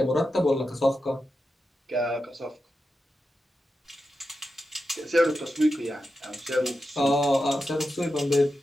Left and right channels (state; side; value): normal; both; correlation 0.90